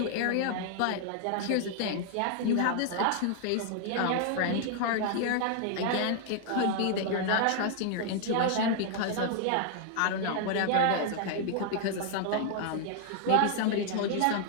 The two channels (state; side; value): different; both; correlation 0.00